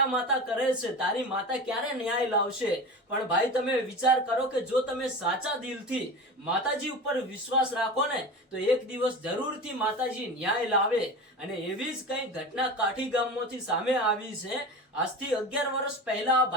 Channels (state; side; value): normal; both; correlation 0.30